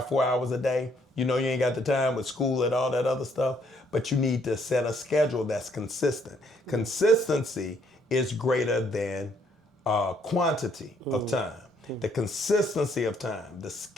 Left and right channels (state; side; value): normal; both; correlation 0.68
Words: 4 hours a day, you ain't got the time with school and all that other stuff, but you need to set a schedule that's consistent. Consistency is greater than quantity of time. The consistency of time, the